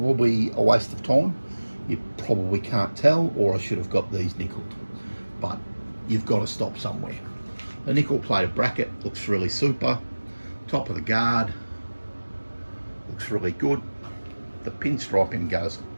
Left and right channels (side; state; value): both; inverted; correlation -1.00